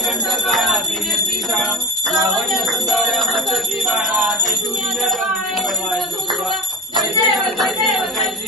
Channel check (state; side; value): normal; both; correlation 0.33